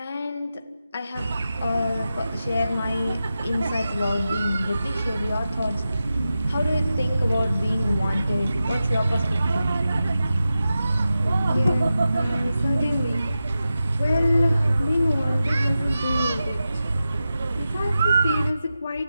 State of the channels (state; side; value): inverted; both; correlation -0.91